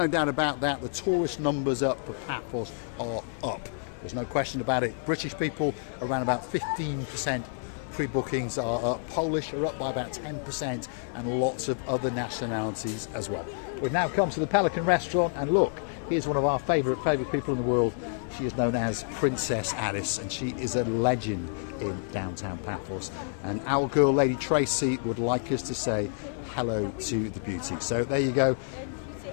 doubt about that. The tourist numbers up for Paphos are up. There's no question about it. British people, around about 15% pre-bookings are up. Polish are up by about 10%, and lots of other nationalities as well. We've now come to the Pelican Restaurant, and look, here's one of our favourite people in the world. She is known as Princess Alice, and she is a legend in downtown Paphos. And our girl, Lady Tracy, would like us to say hello to the beauty. So there you go.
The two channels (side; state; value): right; silent; digital silence